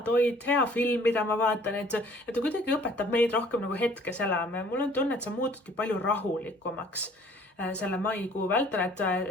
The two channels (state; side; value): normal; both; correlation 0.55